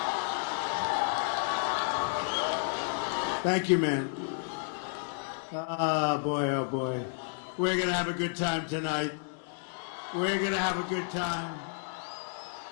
Thank you, man. Oh, boy. We're going to have a good time tonight. We're going to have a good time.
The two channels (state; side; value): silent; right; digital silence